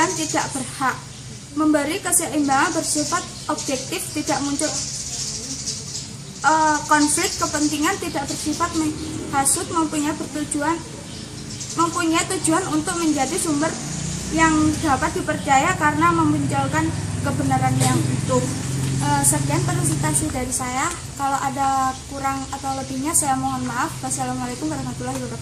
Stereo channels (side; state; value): both; identical; correlation 1.00